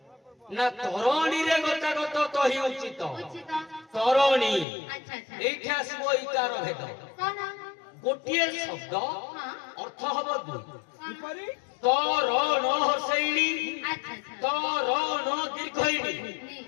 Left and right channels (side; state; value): right; drops out; at 4.7 s